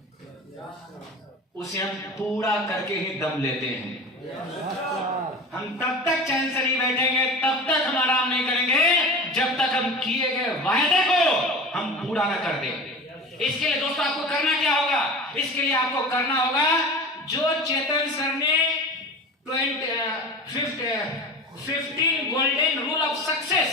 उसे हम पूरा करके ही दम लेते हैं। हम तब तक चैन से नहीं बैठेंगे, तब तक हम आराम नहीं करेंगे जब तक हम किए गए वायदे को हम पूरा ना कर दें। इसके लिए दोस्तों आपको करना क्या होगा? इसके लिए आपको करना होगा जो चेतन सर ने 15 गोल्डन रूल ऑफ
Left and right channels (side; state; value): both; normal; correlation 0.33